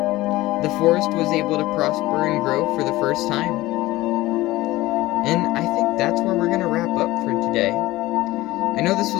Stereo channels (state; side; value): quieter; right; 18.0 dB